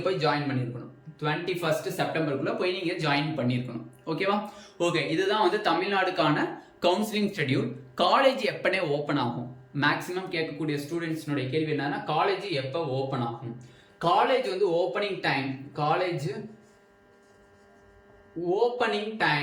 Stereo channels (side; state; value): both; identical; correlation 1.00